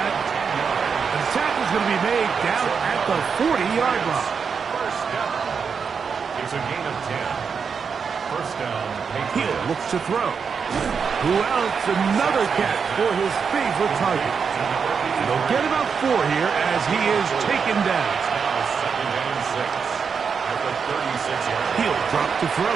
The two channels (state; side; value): quieter; left; 6.0 dB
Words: The tackle is going to be made down at the 40-yard line. First down. It's a gain of 10. First down. Hill looks to throw. Who else? Another catch for his favorite target. And they'll get about 4 here as he is taken down. Now second and 6 at the 36-yard line. He'll drop to throw.